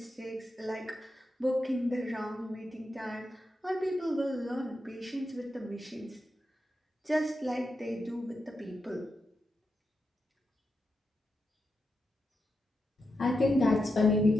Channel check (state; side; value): normal; both; correlation 0.87